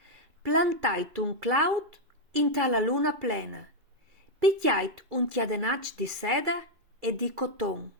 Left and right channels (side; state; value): left; late; 2.4 ms